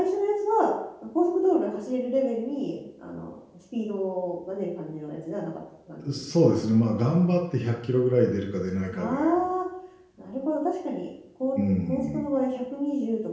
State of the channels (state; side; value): identical; both; correlation 1.00